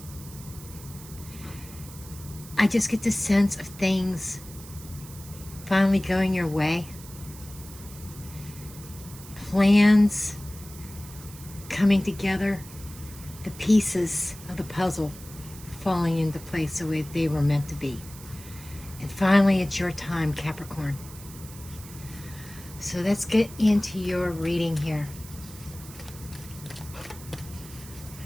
I just get the sense of things finally going your way. Plans coming together, the pieces of the puzzle falling into place the way they were meant to be. And finally, it's your time, Capricorn. So let's get into your reading here.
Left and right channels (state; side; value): noise; right; hiss, 17 dB below the sound